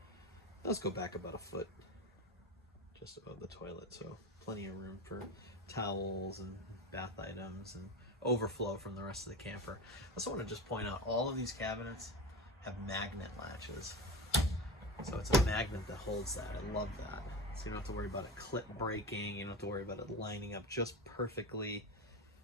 Those go back about a foot, just above the toilet, so plenty of room for towels and bath items and overflow from the rest of the camper. I also want to just point out all of these cabinets have magnet latches. So it's a magnet that holds that. I love that. So you don't have to worry about it clip breaking. You don't have to worry about it lining up just perfectly.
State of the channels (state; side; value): normal; both; correlation 0.24